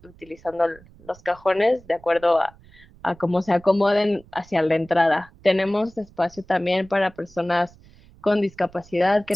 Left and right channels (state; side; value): noise; right; rumble, 25 dB below the sound